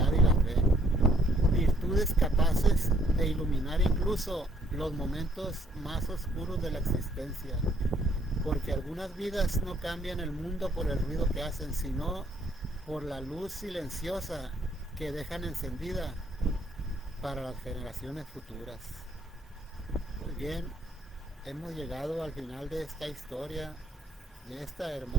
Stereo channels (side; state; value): both; normal; correlation 0.67